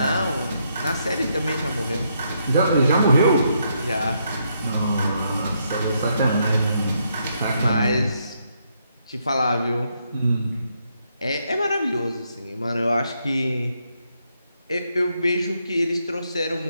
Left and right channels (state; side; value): inverted; both; correlation -0.77